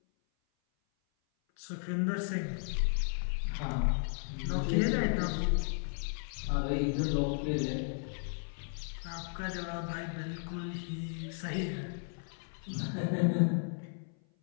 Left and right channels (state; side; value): silent; right; 55 dB below the other